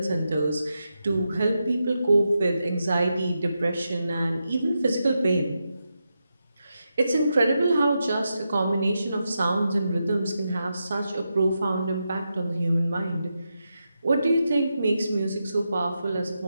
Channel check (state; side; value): inverted; both; correlation -0.87